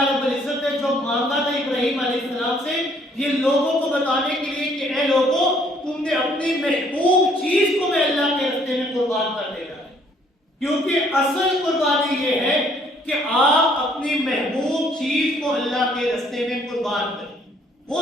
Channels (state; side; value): normal; both; correlation 0.63